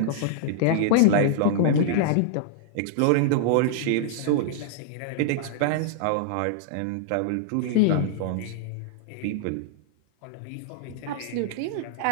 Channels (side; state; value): both; different; correlation -0.01